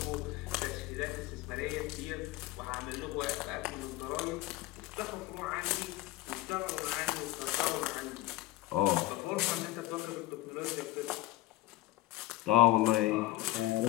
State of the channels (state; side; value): quieter; right; 16.7 dB